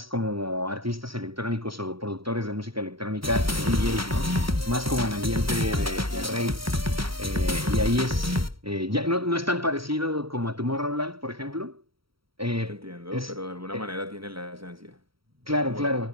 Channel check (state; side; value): late; left; 0.75 ms